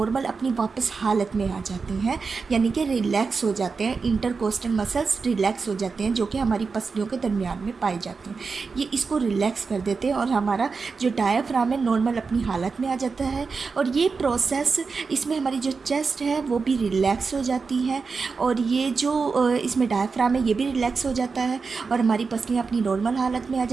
अपनी वापस हालत में आ जाती हैं, यानी कि रिलैक्स हो जाते हैं। इंटरकोस्टल मसल्स रिलैक्स हो जाते हैं जो कि हमारी पसलियों के दरमियान में पाए जाते हैं। ये इसको रिलैक्स कर देते हैं और हमारा जो डायाफ्राम है नॉर्मल अपनी हालत में आ जाता है। और ये प्रोसेस, इसमें हमारी जो चेस्ट है वो भी रिलैक्स हो जाती है, और ये जो इसमें डायाफ्राम है ये भी रिलैक्स हो जाता है, और हमारी पसलियाँ अपनी नॉर्मल हालत में आ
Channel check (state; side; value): quieter; left; 4.8 dB